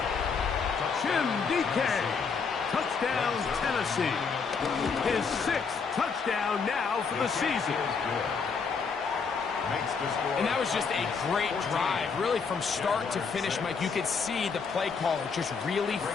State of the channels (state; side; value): quieter; right; 5.4 dB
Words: Jim DK. Touchdown, Tennessee. His 6th touchdown now for the season. And that was just a great drive. Really from start to finish, Mike, you could see the play caller just really